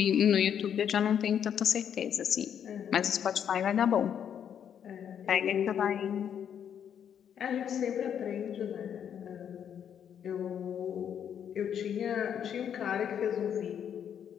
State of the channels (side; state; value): right; quieter; 8.7 dB